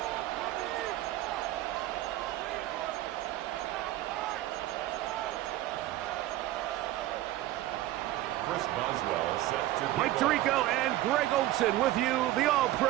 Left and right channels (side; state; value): left; quieter; 15.2 dB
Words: Mike Tirico and Greg Olson with you. The